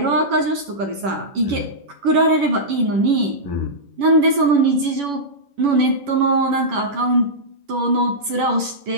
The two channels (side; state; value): left; late; 10 ms